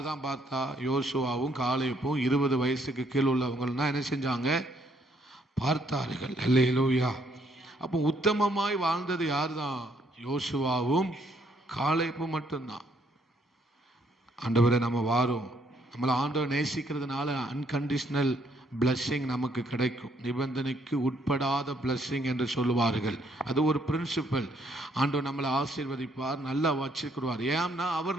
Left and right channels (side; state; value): both; normal; correlation 0.69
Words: தான் பார்த்தா? யோசுவாவும் காலேபும் 20 வயசுக்கு கீழ் உள்ளவங்கன்னா என்ன செஞ்சாங்க? பார்த்தார்கள். அல்லேலூயா. அப்போ உத்தமமாய் வாழ்ந்தது யார் தான்? யோசுவாவும் காலேபும் மட்டும்தான். ஆண்டவரை நம்ம வாரோம், நம்மளை ஆண்டவர் நேசிக்கிறதுனால அன்கண்டிஷனல் பிளஸ்ஸிங் நமக்கு கிடைக்கும். நிபந்தனைக்கு உட்படாத பிளஸ்ஸிங் என்று சொல்லுவார்கள். அது ஒரு பிரின்சிபல். ஆண்டவர் நம்மளை ஆசீர்வதிப்பார், நல்லா வச்சுக்கிறார். ஏன்னா